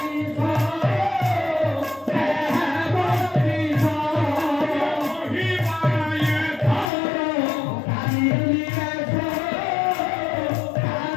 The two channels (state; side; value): drops out; right; at 6.9 s